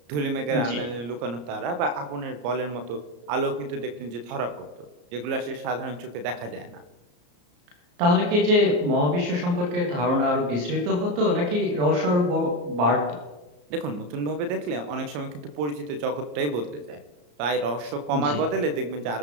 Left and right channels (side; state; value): left; late; 34 ms